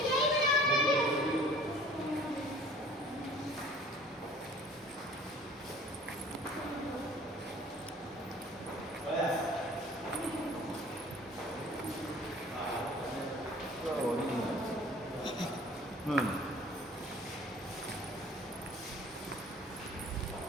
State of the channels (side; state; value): both; normal; correlation 0.49